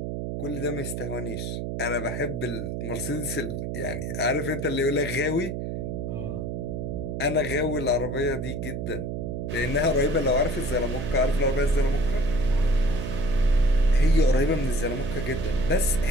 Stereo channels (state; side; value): noise; right; hum, 4 dB below the sound